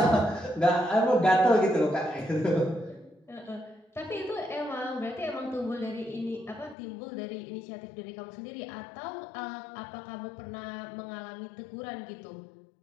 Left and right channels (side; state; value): right; drops out; at 6.8 s